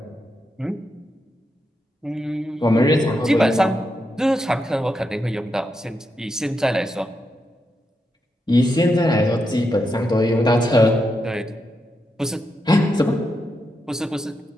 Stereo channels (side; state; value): both; normal; correlation 0.84